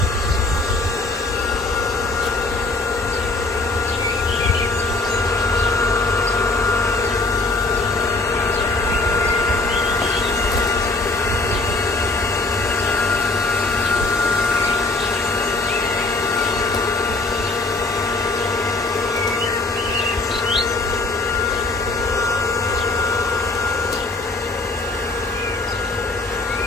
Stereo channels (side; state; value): right; quieter; 3.3 dB